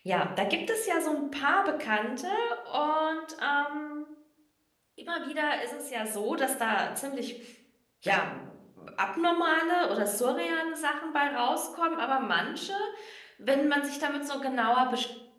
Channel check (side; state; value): both; identical; correlation 1.00